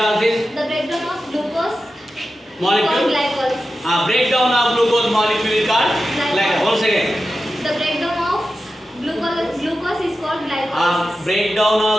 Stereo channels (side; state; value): both; normal; correlation 0.92